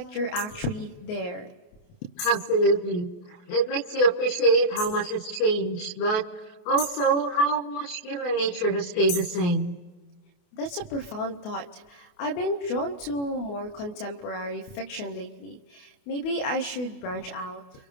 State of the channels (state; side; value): late; right; 28 ms